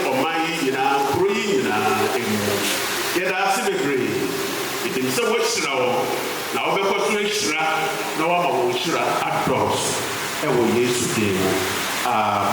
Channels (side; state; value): both; identical; correlation 1.00